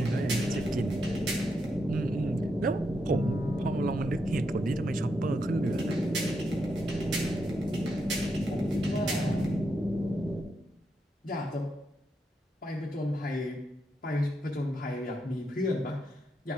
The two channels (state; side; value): normal; both; correlation 0.82